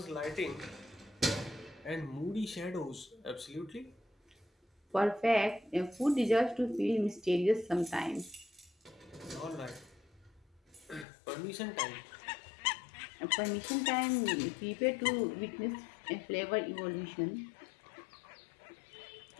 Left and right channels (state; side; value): drops out; right; at 11.1 s